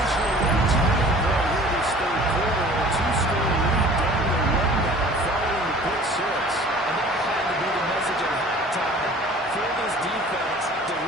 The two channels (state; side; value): normal; both; correlation 0.47